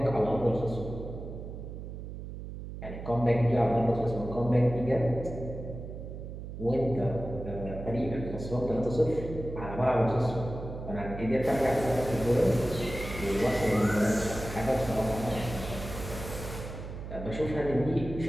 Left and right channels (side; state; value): right; noise; hum, 9 dB below the sound